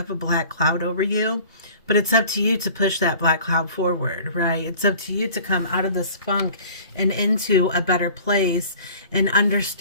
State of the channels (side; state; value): both; inverted; correlation -0.46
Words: a black cloud over you. But it's up to you to push that black cloud forward, right? It's up to you to come out of this funk and into a better place and